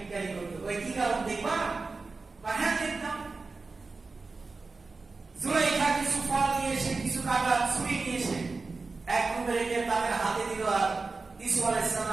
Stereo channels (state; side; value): quieter; left; 4.0 dB